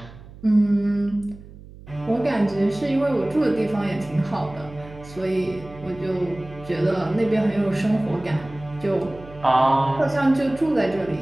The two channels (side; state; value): right; noise; hum, 18 dB below the sound